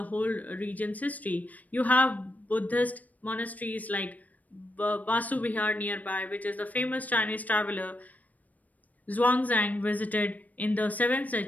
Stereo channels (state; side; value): late; right; 0.075 ms